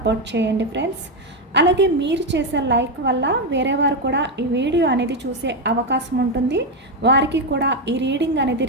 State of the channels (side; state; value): both; normal; correlation 0.07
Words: చేయండి ఫ్రెండ్స్. అలాగే మీరు చేసే లైక్ వల్ల వేరే వారు కూడా ఈ వీడియో అనేది చూసే అవకాశం ఉంటుంది. వారికి కూడా ఈ రీడింగ్ అనేది